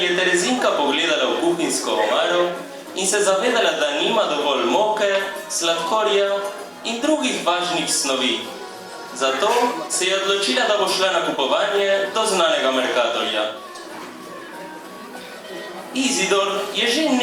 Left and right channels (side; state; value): both; identical; correlation 1.00